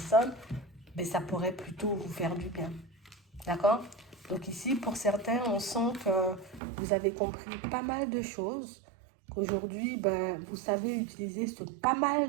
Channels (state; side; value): drops out; left; at 6.6 s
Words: ben, ça pourrait plutôt vous faire du bien. D'accord? Donc ici, pour certains, on sent que vous avez compris pas mal de choses, qu'aujourd'hui, ben, vous savez utiliser ce pas